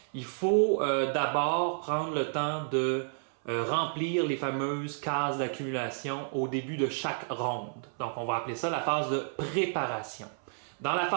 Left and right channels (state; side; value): silent; left; 57 dB below the other